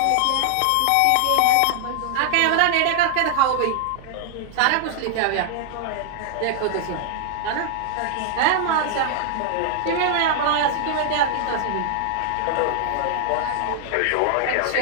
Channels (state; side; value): different; both; correlation 0.00